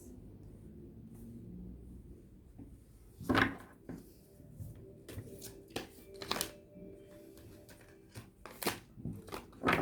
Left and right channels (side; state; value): both; identical; correlation 1.00